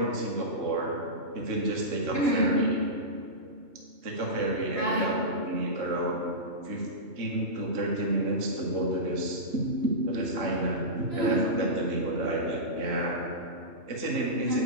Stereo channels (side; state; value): left; late; 3.0 ms